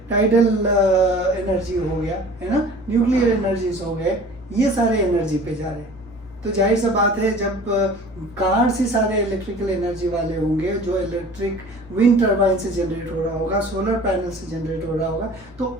टाइडल एनर्जी हो गया, है ना, न्यूक्लियर एनर्जीज हो गए, ये सारे एनर्जी पे जा रहे हैं। तो जाहिर सा बात है जब कार से सारे इलेक्ट्रिकल एनर्जी वाले होंगे, जो इलेक्ट्रिक विंड टर्बाइन से जनरेट हो रहा होगा, सोलर पैनल से जनरेट हो रहा होगा, तो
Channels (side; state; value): both; normal; correlation 0.45